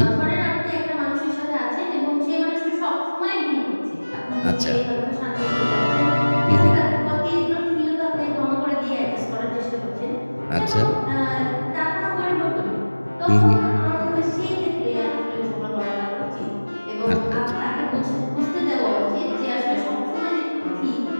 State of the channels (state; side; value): inverted; both; correlation -1.00